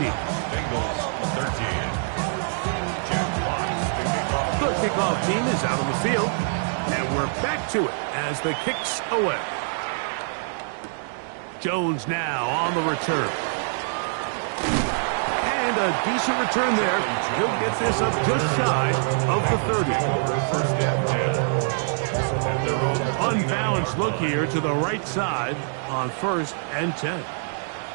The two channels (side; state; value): left; silent; digital silence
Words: Bangles 13. The kickoff team is out on the field. And we're back to it as the kick's away. Jones now on the return. And a decent return there. He'll get this up just shy of the 30. First and 10. Unbalanced look here to the right side on 1st and 10.